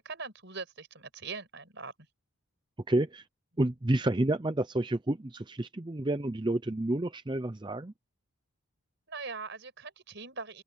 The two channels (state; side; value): normal; both; correlation 0.77